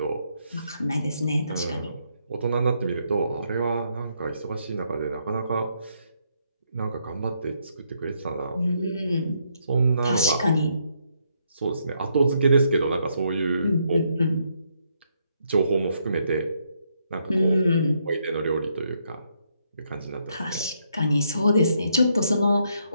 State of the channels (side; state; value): both; inverted; correlation -0.75